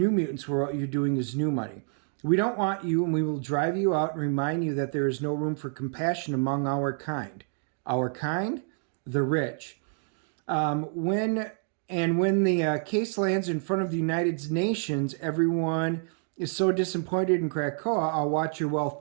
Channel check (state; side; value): silent; left; 56 dB below the other